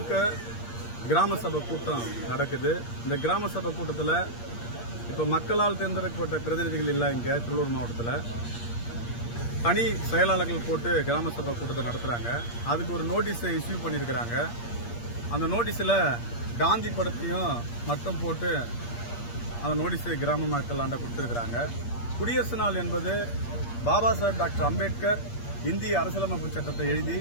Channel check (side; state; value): right; late; 8.5 ms